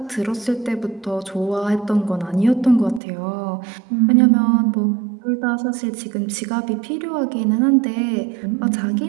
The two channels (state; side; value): drops out; left; at 3.0 s